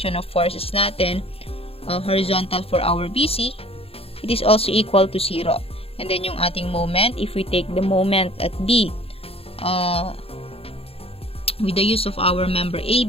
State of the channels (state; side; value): late; right; 0.28 ms